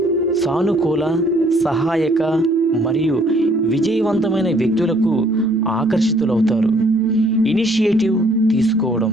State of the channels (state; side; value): normal; both; correlation 0.62